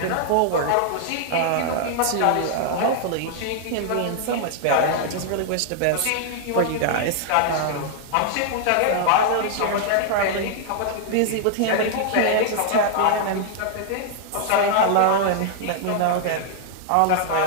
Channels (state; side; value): different; both; correlation -0.01